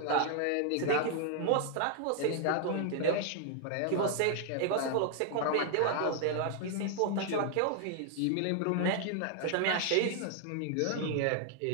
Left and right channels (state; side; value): different; both; correlation 0.00